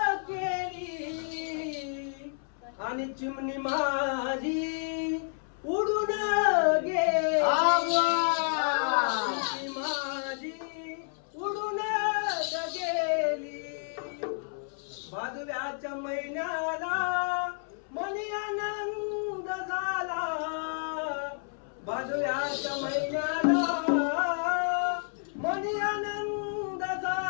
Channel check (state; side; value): silent; right; 58 dB below the other